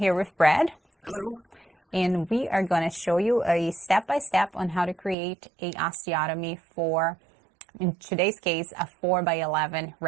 with Brad. Hello. And we are going to show you a step-by-step on how to create a osteotomy for, in today's case, a 4x11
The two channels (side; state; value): left; drops out; at 5.2 s